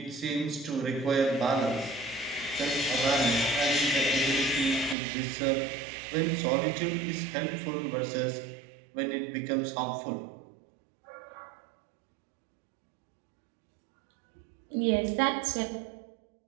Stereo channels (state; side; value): drops out; left; at 5.0 s